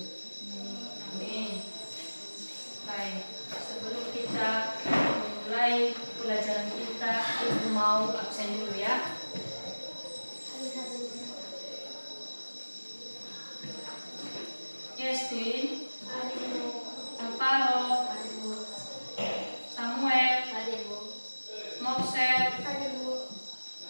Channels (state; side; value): inverted; both; correlation -1.00